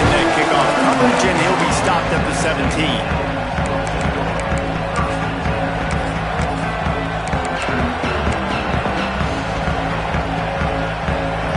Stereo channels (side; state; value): both; identical; correlation 1.00